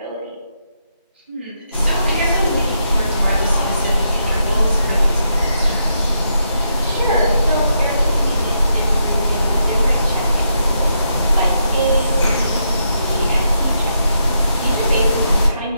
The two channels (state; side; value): inverted; both; correlation -0.80